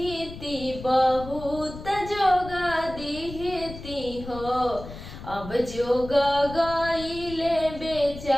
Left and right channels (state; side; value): noise; left; rumble, 13 dB below the sound